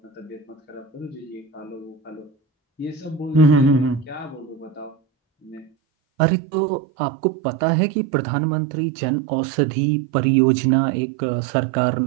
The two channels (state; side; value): drops out; left; at 5.7 s